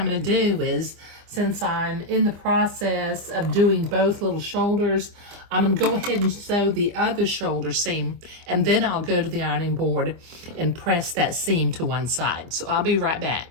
going to do is, since I'm in the process of doing both little shoulders, I'm going to go ahead and sew the other shoulder seam, and then I'll go to the ironing board and press that seam to one side. So I'll be right back.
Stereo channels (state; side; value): late; left; 25 ms